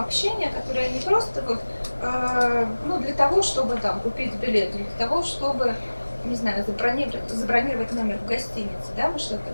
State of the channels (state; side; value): inverted; both; correlation -1.00